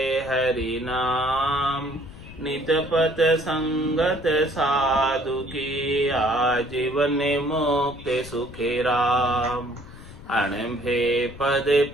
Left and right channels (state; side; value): noise; left; rumble, 17 dB below the sound